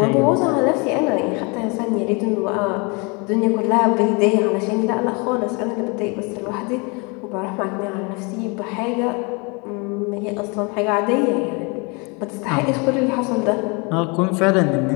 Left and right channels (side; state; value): right; quieter; 30.3 dB